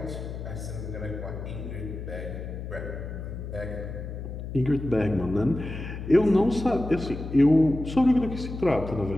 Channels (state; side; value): noise; left; hum, 8 dB below the sound